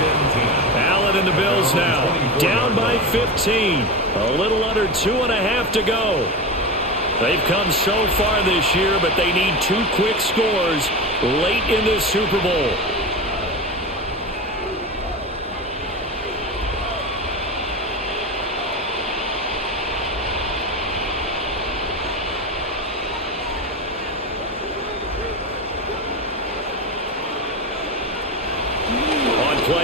Allen and the Bills now down by 15. A little under 2.5 to go. They've come so far this year, but they need 2 quick scores late in this Super Bowl.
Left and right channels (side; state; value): both; normal; correlation 0.22